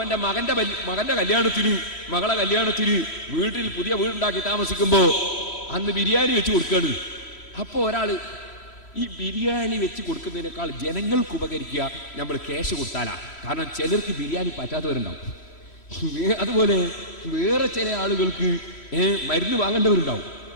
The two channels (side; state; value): right; late; 3.1 ms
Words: മകന്റെ കല്യാണത്തിന്, മകളെ കല്യാണത്തിന് വീട്ടിൽ പുതിയ വീടുണ്ടാക്കി താമസിക്കുമ്പോ അന്ന് ബിരിയാണി വെച്ച് കൊടുക്കാണ്. അപ്പോ ഒരാള് ഈ ബിരിയാണി വെച്ച് കൊടുക്കുന്നതിനേക്കാൾ ജനങ്ങൾക്ക് ഉപകരിക്കുക നമ്മൾ ക്യാഷ് കൊടുത്താലാ. കാരണം ചിലർക്ക് ബിരിയാണി പറ്റാത്തവരുണ്ടാവും. അതുപോലെ വേറെ ചില ആളുകൾക്ക് മരുന്ന് വാങ്ങേണ്ടവരുണ്ടാവും,